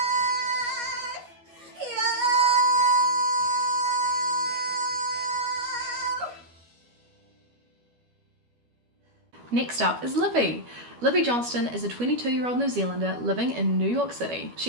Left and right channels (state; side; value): late; left; 12 ms